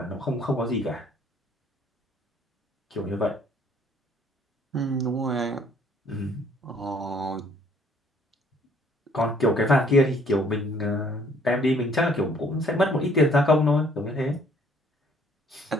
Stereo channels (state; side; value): normal; both; correlation 0.61